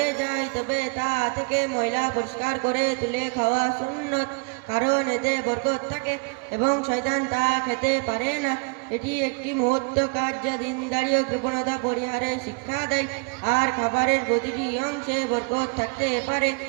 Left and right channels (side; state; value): left; quieter; 33.3 dB